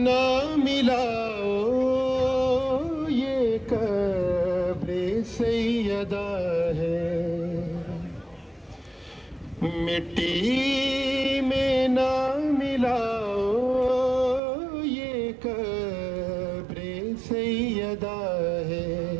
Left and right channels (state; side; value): drops out; left; at 14.4 s